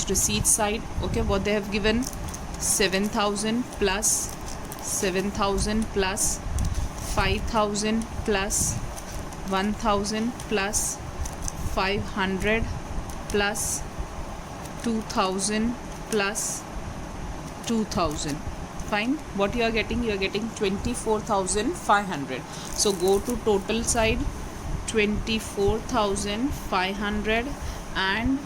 receipt side. Okay, what they have given, 7000 plus 7000 plus 5000 plus 1000 plus 500 plus 2000 plus 2000. Fine. What you are getting? You are getting 24,500. So go to total side, 24,500 and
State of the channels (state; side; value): identical; both; correlation 1.00